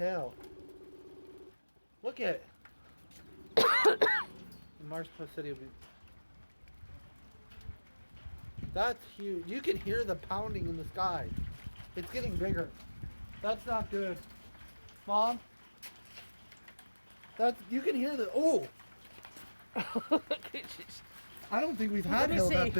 Look at it. Mark's said he'll be. That's huge. You can hear the pounding in the sky. It's getting bigger. That's not good. Mom? You can hear the, oh! I don't think we've had hail that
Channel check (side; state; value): both; inverted; correlation -1.00